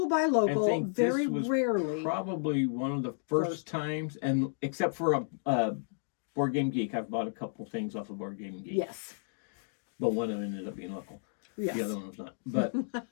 buy local, I think very this was rarely. Probably one of the first times, and except for a Board Game Geek, I've bought a couple things off of Board Game Geek. Yes. But one of them ended up being local. Yes. The other one was not. But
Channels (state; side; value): silent; right; digital silence